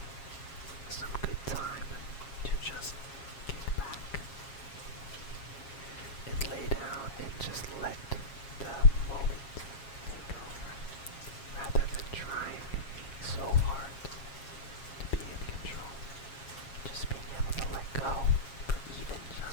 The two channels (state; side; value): late; right; 7.3 ms